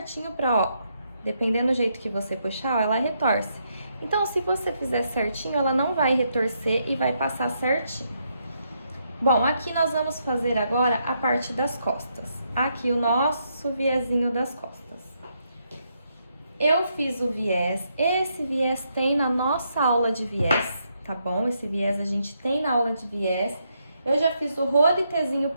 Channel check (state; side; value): inverted; both; correlation -0.78